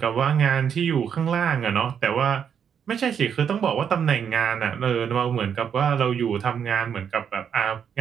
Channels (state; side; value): quieter; left; 7.8 dB